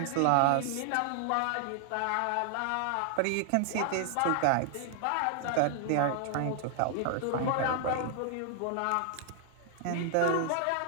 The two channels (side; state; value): both; different; correlation 0.00